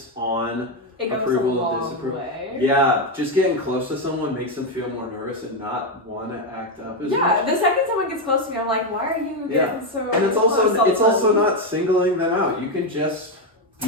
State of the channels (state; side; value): normal; both; correlation 0.07